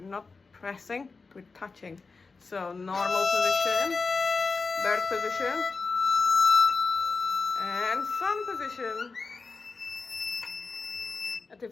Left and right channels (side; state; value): right; quieter; 4.3 dB